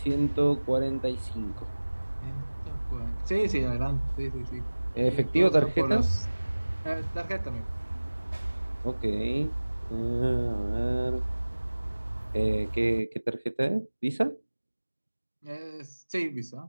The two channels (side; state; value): both; inverted; correlation -1.00